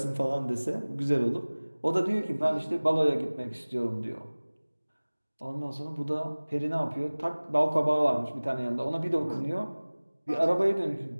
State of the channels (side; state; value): both; inverted; correlation -1.00